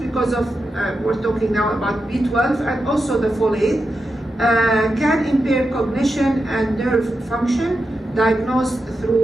of, we're talking now about B12 and also the folate, can impair cognition and nerve function, diagnosed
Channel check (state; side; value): normal; both; correlation 0.88